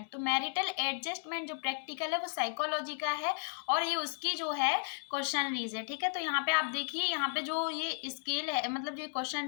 तो मैरिटल एडजस्टमेंट जो प्रैक्टिकल है वो साइकोलॉजी का है और ये उसकी जो है क्वेश्चनरीज है। ठीक है, तो यहाँ पे आप देखिए, यहाँ पे जो ये स्केल है, मतलब जो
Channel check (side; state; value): right; silent; 55 dB below the other